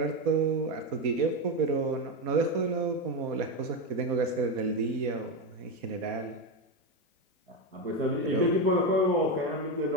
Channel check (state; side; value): normal; both; correlation 0.11